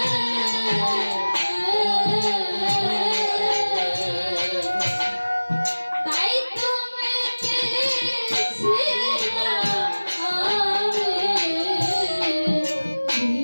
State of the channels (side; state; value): both; inverted; correlation -1.00